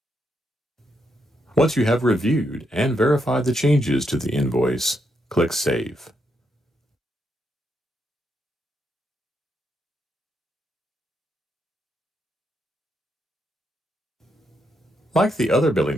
Once you have reviewed and verified the changes to the invoice, click Save. Like the other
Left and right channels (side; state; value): both; normal; correlation 0.80